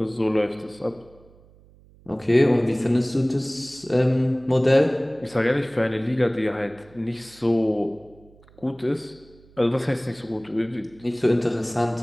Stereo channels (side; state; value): right; noise; hum, 27 dB below the sound